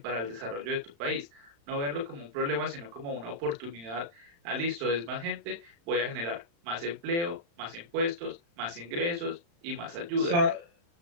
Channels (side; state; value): left; late; 35 ms